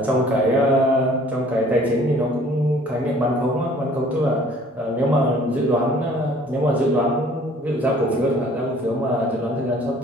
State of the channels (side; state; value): both; normal; correlation 0.54